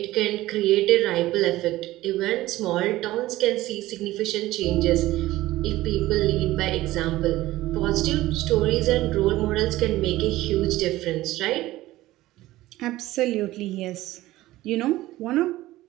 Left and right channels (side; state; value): left; quieter; 16.7 dB